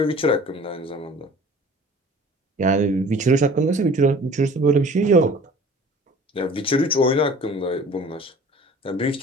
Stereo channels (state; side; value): normal; both; correlation 0.46